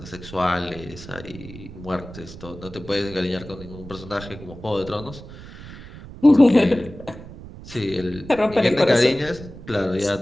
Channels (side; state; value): right; noise; rumble, 15 dB below the sound